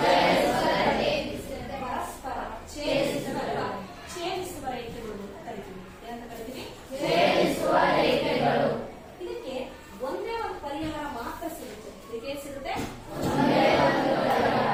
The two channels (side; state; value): both; identical; correlation 1.00